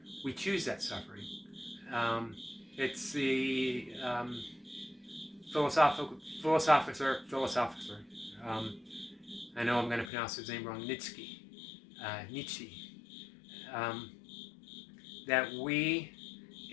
we choose that suffering. It's the philosopher. I know I'm going to pronounce his name wrong. Nietzsche. That we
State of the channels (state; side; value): drops out; right; at 10.1 s